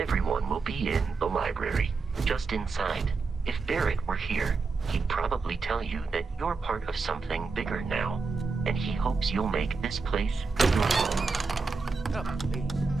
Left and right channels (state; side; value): quieter; left; 4.4 dB